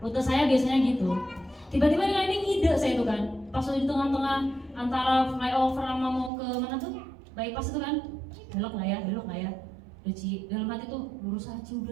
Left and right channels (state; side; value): drops out; left; at 6.3 s